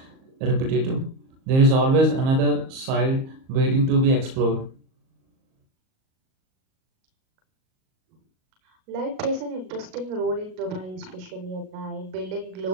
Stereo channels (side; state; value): left; late; 38 ms